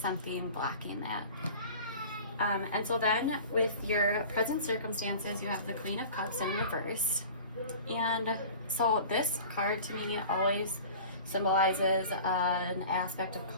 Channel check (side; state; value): both; inverted; correlation -0.40